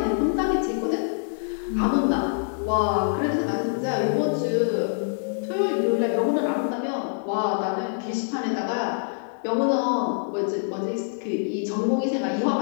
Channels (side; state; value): right; silent; digital silence